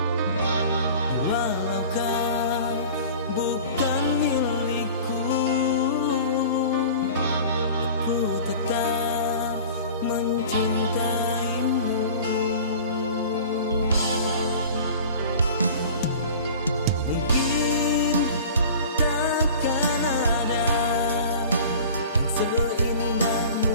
Walau kau bukan milikku, aku tetap mencintaimu. Mungkin takkan ada yang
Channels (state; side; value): inverted; both; correlation -0.40